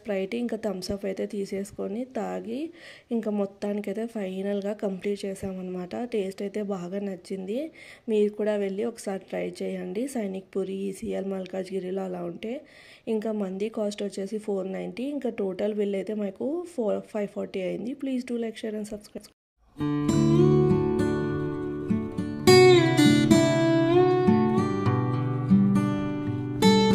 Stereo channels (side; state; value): both; identical; correlation 1.00